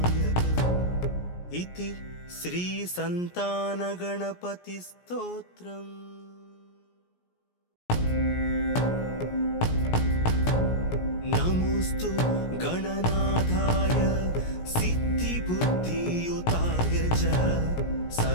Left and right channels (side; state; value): right; late; 17 ms